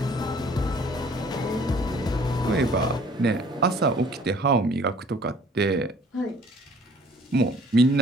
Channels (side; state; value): both; normal; correlation 0.54